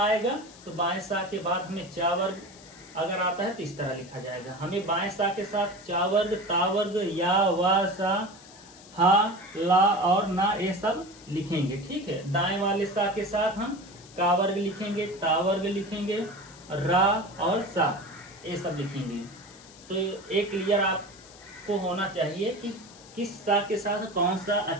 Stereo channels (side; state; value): left; noise; hiss, 21 dB below the sound